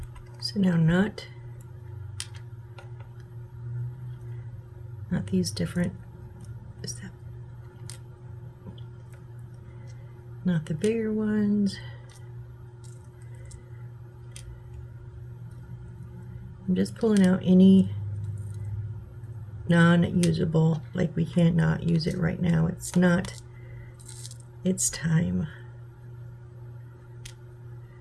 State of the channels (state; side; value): identical; both; correlation 1.00